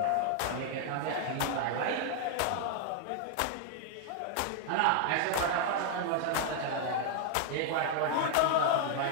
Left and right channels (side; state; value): both; different; correlation 0.00